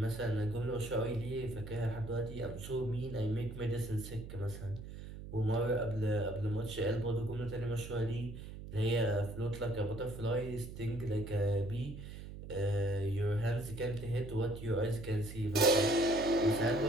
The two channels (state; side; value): noise; right; hum, 11 dB below the sound